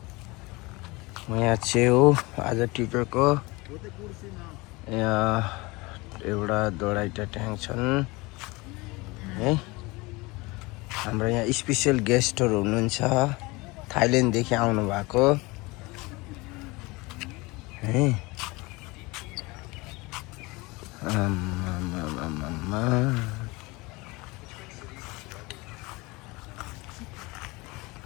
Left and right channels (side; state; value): right; quieter; 23.9 dB